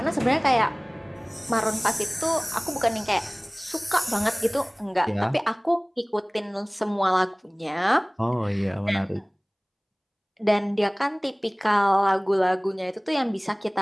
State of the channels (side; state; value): both; identical; correlation 1.00